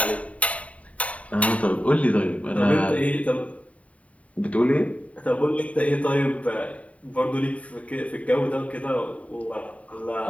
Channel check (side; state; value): right; late; 0.067 ms